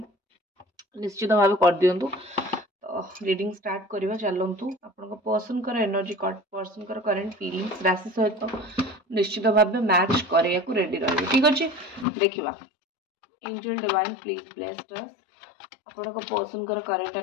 निश्चित भाव कर दिंतु। रीडिंग स्टार्ट करवा चलतु आपण पर्सन कर एनर्जी पर्सन कर करेंट फीलिंग्स राशि सहित निश्चित भाव मैच करिया को रेडी रही। ठीक अच्छे देखा एंजल डिवाइन प्लीज ब्लेस्ड अस आपण पर्सन कर करेंट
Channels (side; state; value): right; drops out; at 12.1 s